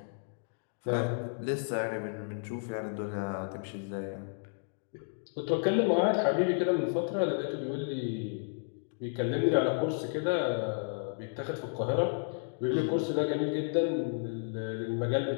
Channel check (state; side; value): silent; right; digital silence